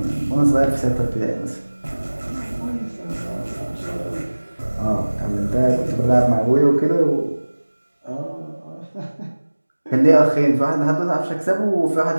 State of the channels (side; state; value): both; inverted; correlation -1.00